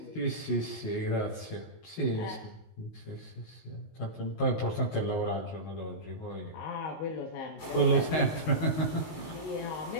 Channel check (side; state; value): right; late; 19 ms